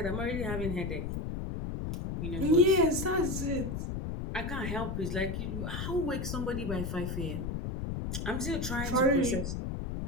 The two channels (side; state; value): left; noise; rumble, 3 dB below the sound